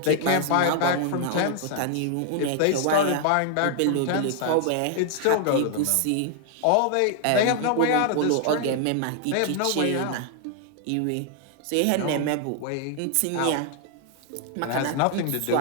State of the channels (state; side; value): different; both; correlation 0.00